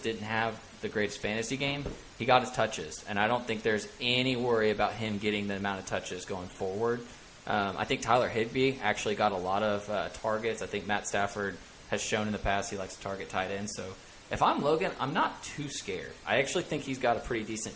have the greatest fantasy game. He got his touches, and I don't think there's any worry about him getting the amount of touches going forward. I think Tyler Higbee actually got a lot of targets. I think Matt Stafford has shown in the past he likes to target tight ends. So if I'm Logan, I'm not too scared. I actually think he's got a pretty decent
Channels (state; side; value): identical; both; correlation 1.00